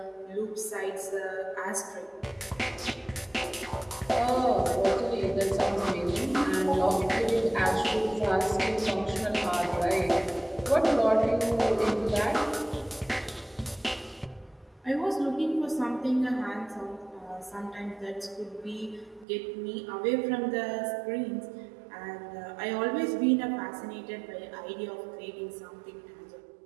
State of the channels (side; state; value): left; drops out; at 19.2 s